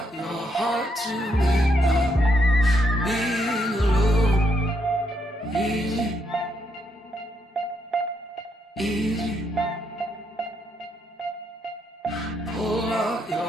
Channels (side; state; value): both; normal; correlation 0.77